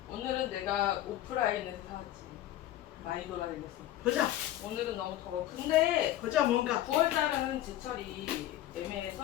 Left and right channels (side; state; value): right; quieter; 13.6 dB